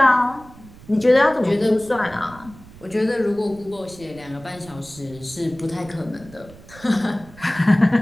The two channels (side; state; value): right; noise; rumble, 20 dB below the sound